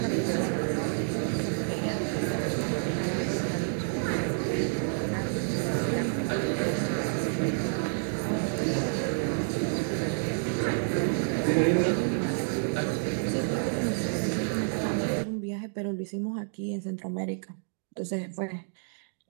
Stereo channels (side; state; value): left; silent; digital silence